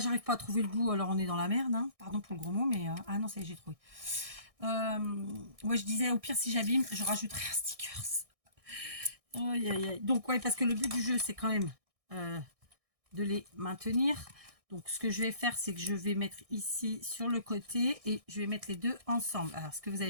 pas à trouver le bout, alors on est dans la merde. Hein. Pardon pour le gros mot, mais... Ah non, ça y est, j'ai trouvé. Ouais, je disais, au pire, si j'abîme, je rajouterai un sticker. Aïe, aïe, aïe. Donc, ouais, parce que le but du jeu, c'est quand même de les maintenir. Donc, ce que je vais faire, c'est que je vais mettre ici sur le côté et je vais mettre les deux ensemble. Alors, ce que vous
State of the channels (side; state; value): left; late; 1.6 ms